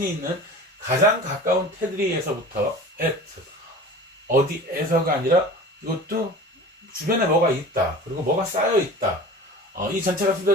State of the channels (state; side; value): normal; both; correlation 0.38